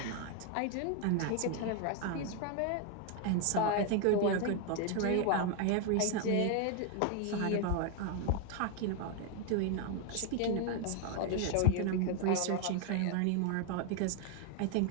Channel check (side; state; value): both; different; correlation 0.00